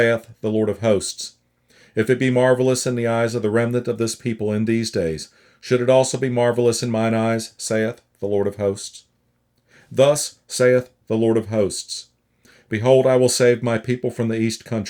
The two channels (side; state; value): both; identical; correlation 1.00